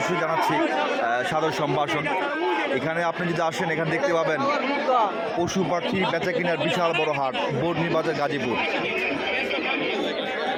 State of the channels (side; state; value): both; identical; correlation 1.00